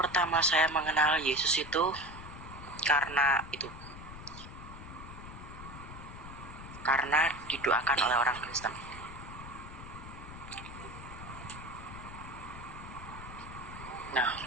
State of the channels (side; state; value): left; noise; rumble, 12 dB below the sound